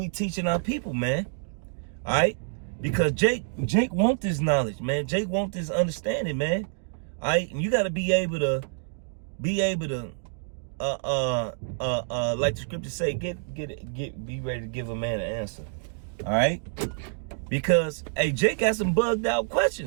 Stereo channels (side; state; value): left; silent; 60 dB below the other